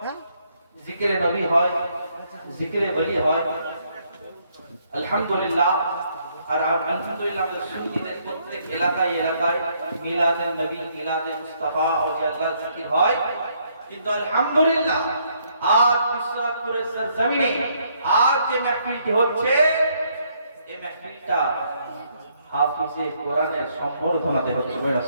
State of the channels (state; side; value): inverted; both; correlation -0.70